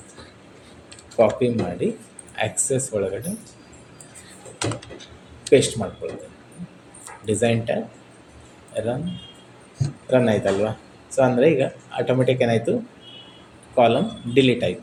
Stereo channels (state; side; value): identical; both; correlation 1.00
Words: ಕಾಪಿ ಮಾಡಿ ಆಕ್ಸೆಸ್ ಒಳಗಡೆ ಪೇಸ್ಟ್ ಮಾಡ್ಕೊಳ್ತೀನಿ. ಡಿಸೈನ್ ಟ್ಯಾಬ್, ರನ್ ಆಯ್ತಲ್ವಾ? ಸೊ ಅಂದರೆ ಈಗ ಆಟೋಮೆಟಿಕ್ ಏನಾಯಿತು? ಕಾಲಮ್ ಡಿಲೀಟ್